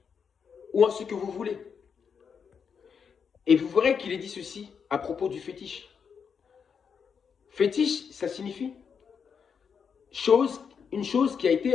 ou en ce que vous voulez. Et vous verrez qu'il est dit ceci à propos du fétiche. Fétiche, ça signifie une chose qui a été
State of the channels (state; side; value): quieter; right; 6.6 dB